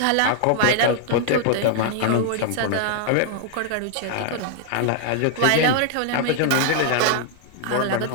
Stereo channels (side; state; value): both; different; correlation 0.00